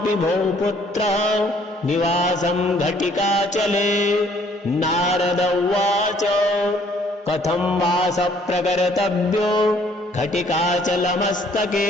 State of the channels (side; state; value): both; normal; correlation 0.62